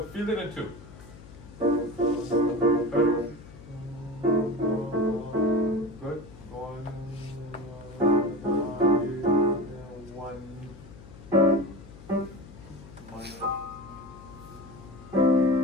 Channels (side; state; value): left; noise; hum, 18 dB below the sound